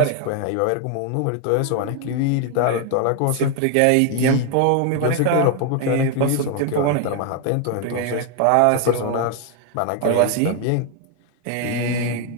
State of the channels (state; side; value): different; both; correlation 0.01